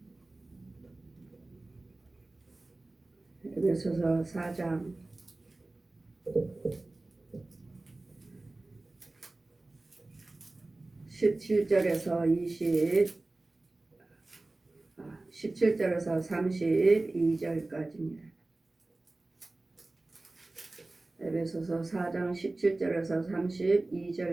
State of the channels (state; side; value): quieter; left; 3.0 dB